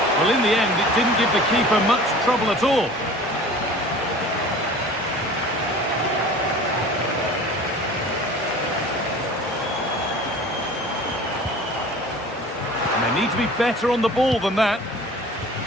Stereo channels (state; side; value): normal; both; correlation 0.42